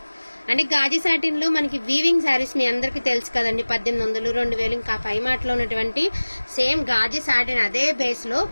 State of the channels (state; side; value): inverted; both; correlation -1.00